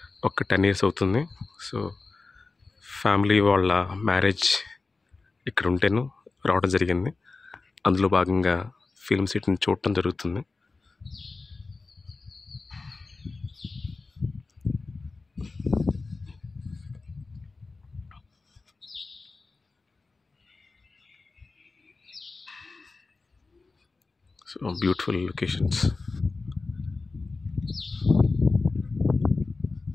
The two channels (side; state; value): right; quieter; 3.8 dB